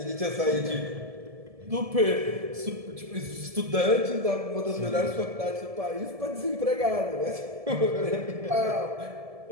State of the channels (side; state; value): left; late; 1.7 ms